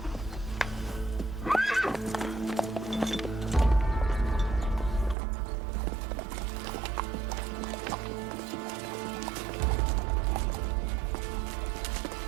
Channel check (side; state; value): left; drops out; at 5.2 s